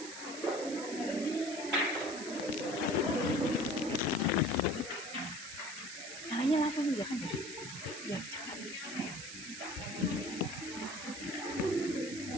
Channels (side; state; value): right; noise; hiss, 9 dB below the sound